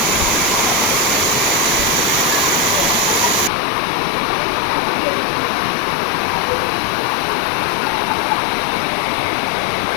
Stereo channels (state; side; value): drops out; right; at 3.5 s